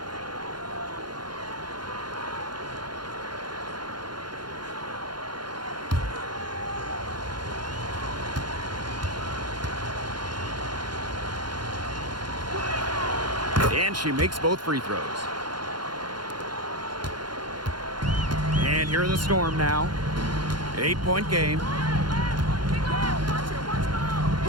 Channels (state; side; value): late; left; 0.71 ms